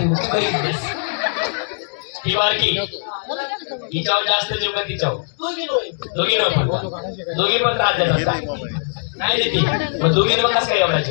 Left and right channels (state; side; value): silent; right; digital silence